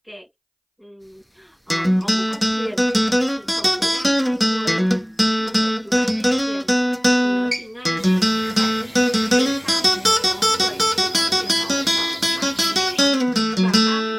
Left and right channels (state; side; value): identical; both; correlation 1.00